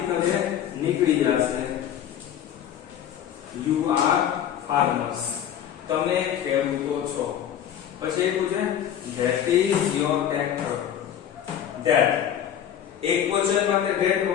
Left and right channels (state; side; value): quieter; right; 9.9 dB